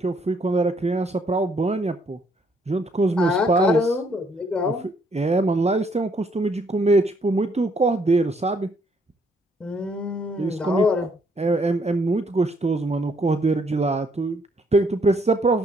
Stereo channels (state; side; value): normal; both; correlation 0.69